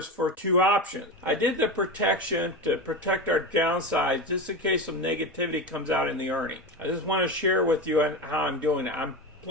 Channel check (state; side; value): normal; both; correlation 0.22